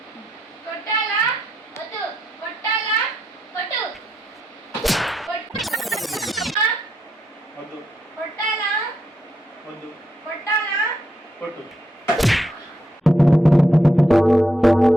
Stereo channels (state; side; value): normal; both; correlation 0.81